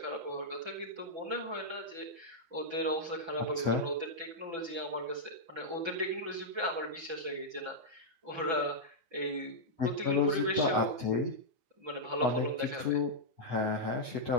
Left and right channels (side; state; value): left; late; 6.0 ms